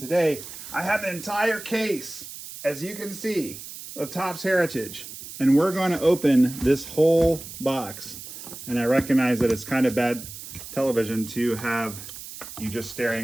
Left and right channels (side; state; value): right; noise; hiss, 12 dB below the sound